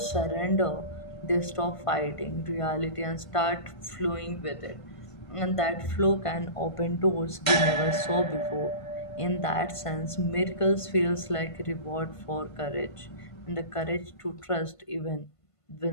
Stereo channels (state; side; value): late; right; 1.5 ms